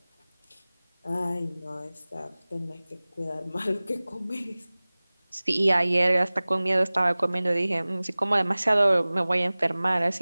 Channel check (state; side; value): inverted; both; correlation -0.99